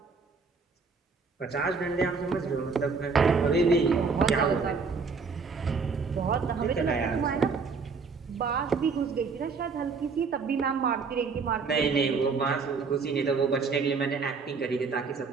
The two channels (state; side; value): quieter; left; 4.8 dB